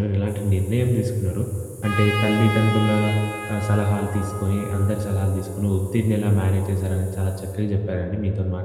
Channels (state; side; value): identical; both; correlation 1.00